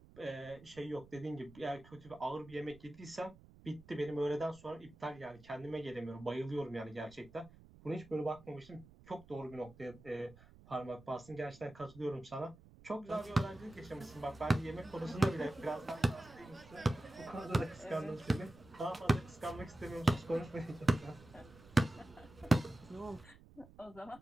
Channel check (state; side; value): noise; right; rumble, 22 dB below the sound